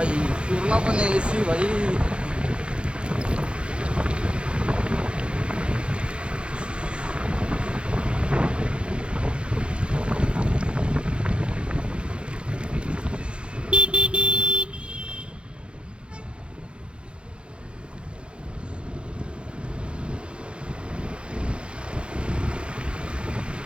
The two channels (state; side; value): late; left; 0.057 ms